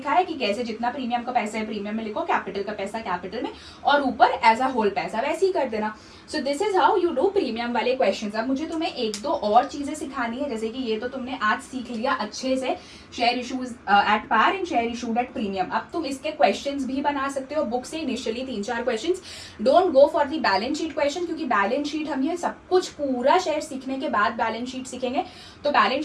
कि कैसे जितना प्रीमियम का पैसा है प्रीमियम में लिखो, कैपिटल का पैसा कैपिटल में, और ऊपर एज अ होल पैसा, वैसे ही कर देना। So this is how you do premium वाले क्वेश्चन। अब मुझे तुम्हें 1-2 और चीजें सिखानी है, जैसे कि ये तो तुमने आज सीख लिया अच्छे से, share issues at par and share issued at premium. अब तुम इसके क्वेश्चंस भी बना सकते हो बुक से, initially 3-4 questions. Don't go for the balance sheet question, क्योंकि बैलेंस शीट हम ये सब कुछ पूरा शेयर सीखने के बाद बैलेंस शीट सीखेंगे, तो बैलेंस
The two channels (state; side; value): identical; both; correlation 1.00